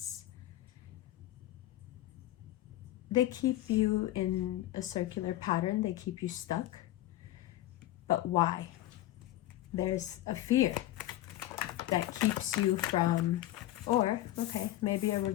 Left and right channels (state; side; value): quieter; right; 14.9 dB